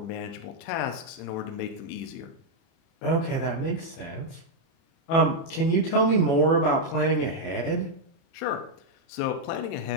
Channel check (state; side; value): late; right; 30 ms